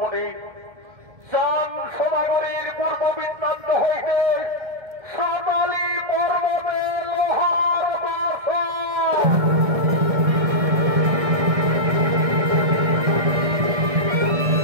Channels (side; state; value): left; late; 1.7 ms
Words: চান সদাগরের পূর্ব বৃত্তান্ত হইতে সাতালি পর্বতে লোহার